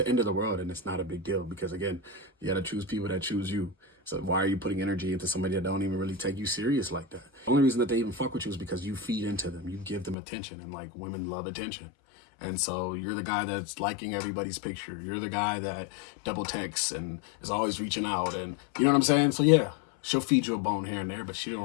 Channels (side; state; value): right; drops out; at 10.2 s